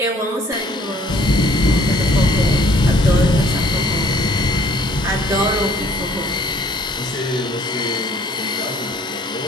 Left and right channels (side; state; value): both; normal; correlation 0.59